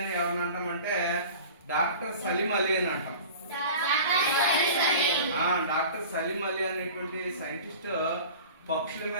ఎవరిని అంటామంటే డాక్టర్ సలీం అలీ అని అంటాం. డాక్టర్ సలీం అలీ అనేటువంటి సైంటిస్ట్ పక్షుల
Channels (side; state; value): both; inverted; correlation -0.39